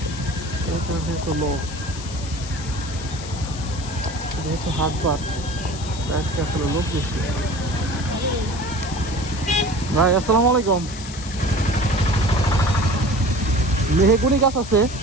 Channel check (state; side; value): noise; left; hiss, 13 dB below the sound